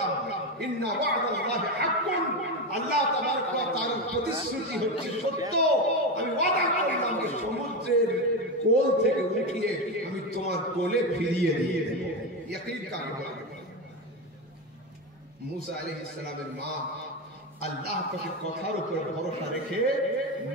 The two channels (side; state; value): both; normal; correlation 0.15